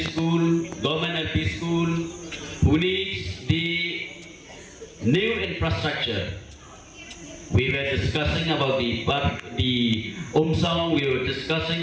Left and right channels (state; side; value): identical; both; correlation 1.00